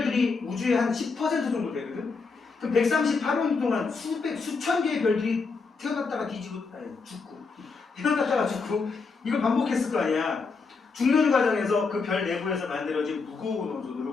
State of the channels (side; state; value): right; quieter; 4.6 dB